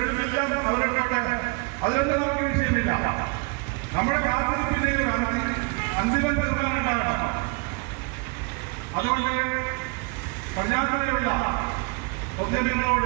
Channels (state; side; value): quieter; left; 30.4 dB